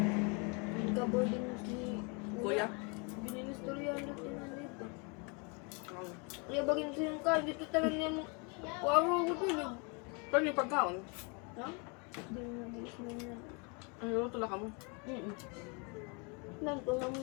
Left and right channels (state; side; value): quieter; right; 32.5 dB